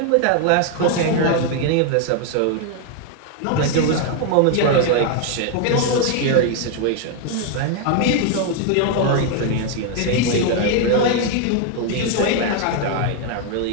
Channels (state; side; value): different; both; correlation 0.01